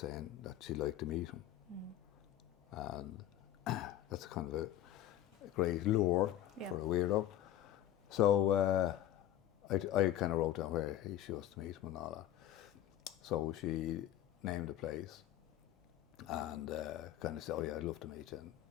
that she'd like to meet him. Mm. And that's kind of a great lure for a weirdo. So I kind of wrote down where she was to meet him and all that. So she named the place and kind of said, oh yeah, I'd love to meet you. And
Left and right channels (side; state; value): right; quieter; 12.5 dB